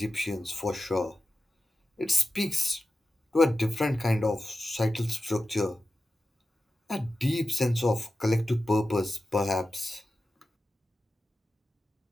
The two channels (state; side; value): normal; both; correlation 0.92